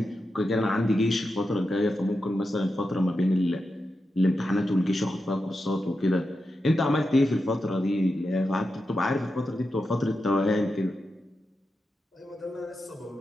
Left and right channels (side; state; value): both; normal; correlation 0.89